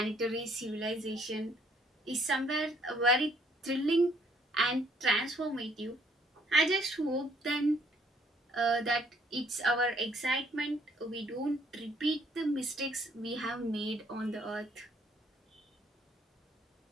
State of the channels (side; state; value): both; normal; correlation 0.64